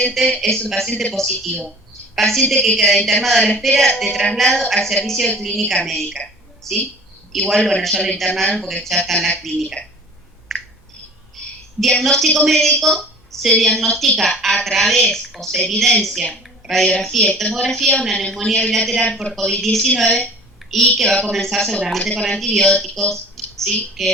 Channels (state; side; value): normal; both; correlation 0.44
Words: positivo. Paciente que queda internado a la espera de traslado al servicio de clínica médica, ¿sí? Igual, bueno, ya lo internaron porque ya está en la clínica. Diagnóstico médico, se diagnostica a través o se evidencia radiografía y tomografía una neumonía bilateral por COVID-19 y que va a comenzar seguramente con antibióticos, ¿sí?